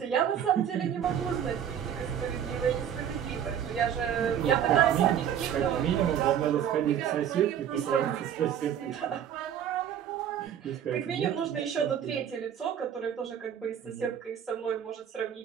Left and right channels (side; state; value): left; quieter; 9.2 dB